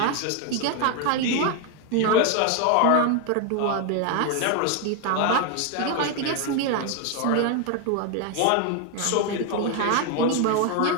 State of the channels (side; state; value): both; different; correlation 0.01